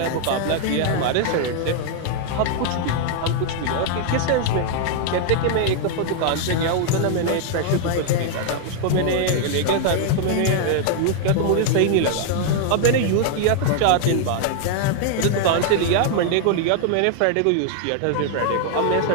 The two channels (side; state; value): both; different; correlation 0.00